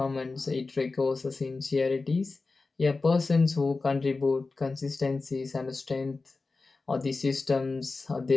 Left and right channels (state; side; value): quieter; right; 3.8 dB